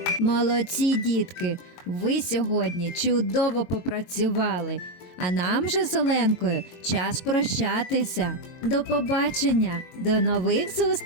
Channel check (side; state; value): right; late; 22 ms